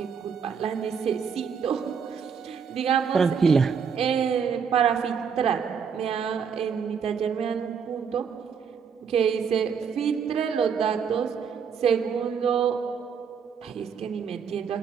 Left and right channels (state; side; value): quieter; left; 6.7 dB